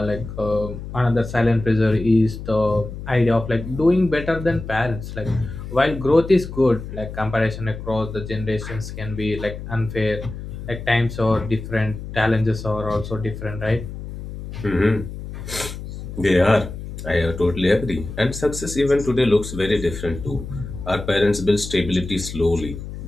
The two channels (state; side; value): noise; left; hum, 10 dB below the sound